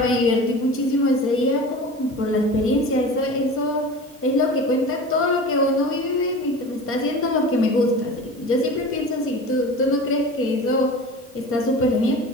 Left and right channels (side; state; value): both; normal; correlation 0.35